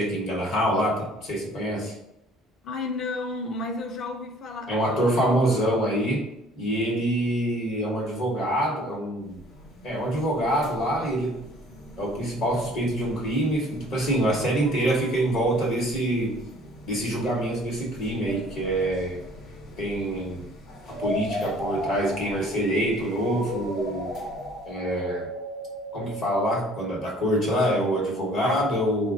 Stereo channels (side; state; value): both; normal; correlation 0.54